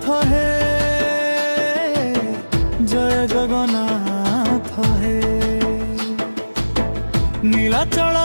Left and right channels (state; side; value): inverted; both; correlation -1.00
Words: হে, জয় জগন্নাথ হে। নীলাচল